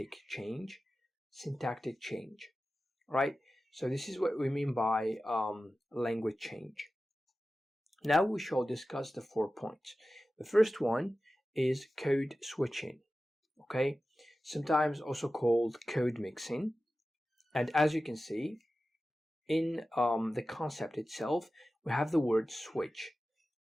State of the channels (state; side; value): normal; both; correlation 0.94